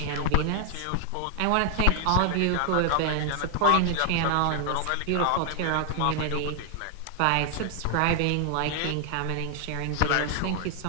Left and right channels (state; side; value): different; both; correlation 0.00